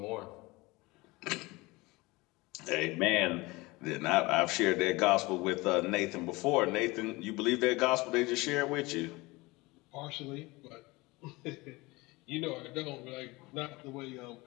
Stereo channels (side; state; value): right; quieter; 22.8 dB